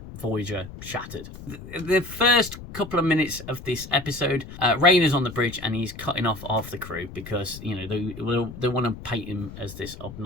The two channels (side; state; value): left; noise; rumble, 14 dB below the sound